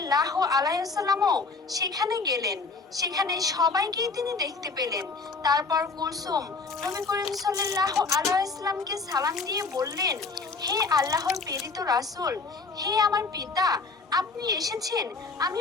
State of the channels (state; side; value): quieter; right; 4.2 dB